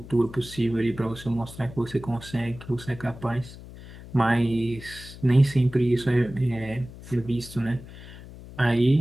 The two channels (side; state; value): left; noise; hum, 16 dB below the sound